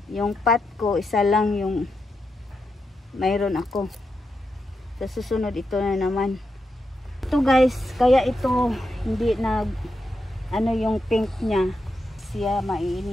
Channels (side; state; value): both; normal; correlation 0.85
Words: Yung pot ko, isa lang yung mayroon ako. Sa susunod ito na naman. Ito guys, kaya ito hindi nag ano yung pink niya. Siya